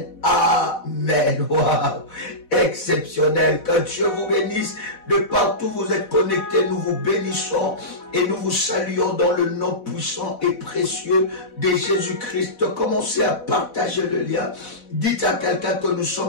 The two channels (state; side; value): late; right; 4.1 ms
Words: amen. Wow, exceptionnel. Que Dieu vous bénisse. De partout où vous êtes connectés, nous vous bénissons et nous vous saluons dans le nom puissant et précieux de Jésus-Christ. Commencez à partager le lien. Dites à quelqu'un que nous